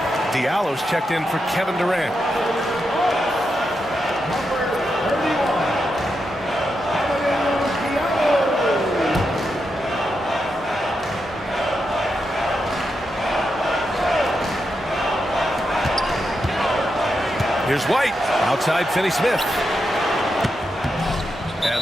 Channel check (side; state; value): both; normal; correlation 0.85